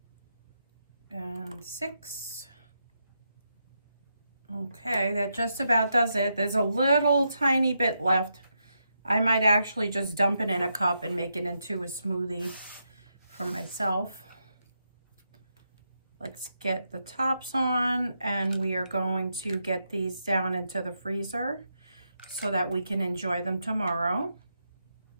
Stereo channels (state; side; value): inverted; both; correlation -0.83